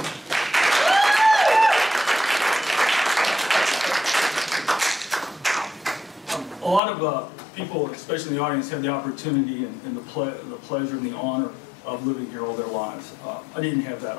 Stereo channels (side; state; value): right; drops out; at 6.8 s